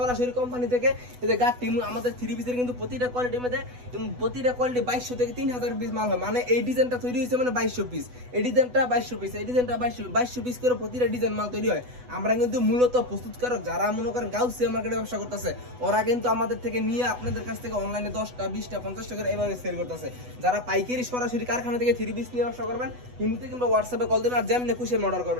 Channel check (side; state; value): left; late; 8.1 ms